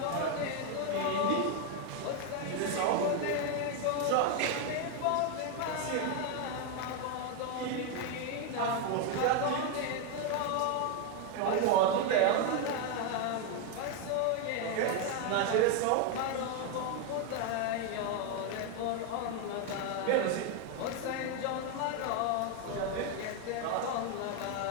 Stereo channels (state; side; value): different; both; correlation 0.01